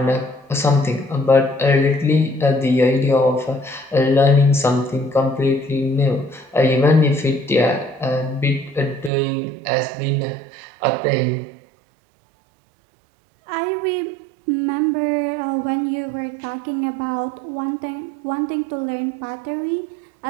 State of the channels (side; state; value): left; drops out; at 9.1 s